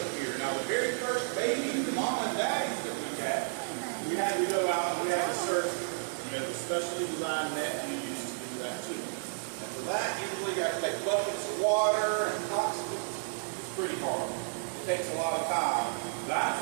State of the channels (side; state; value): left; silent; digital silence